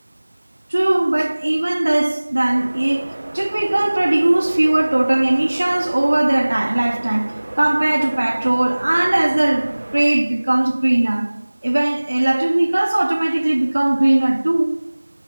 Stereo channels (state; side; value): inverted; both; correlation -1.00